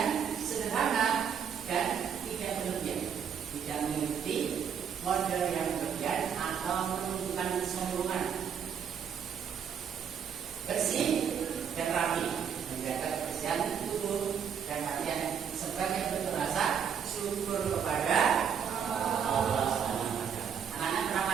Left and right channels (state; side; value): quieter; left; 7.7 dB